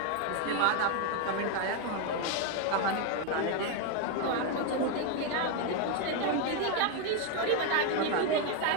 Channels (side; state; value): both; different; correlation 0.01